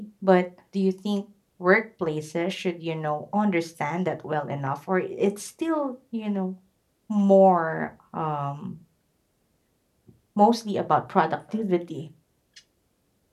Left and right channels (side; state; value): both; identical; correlation 1.00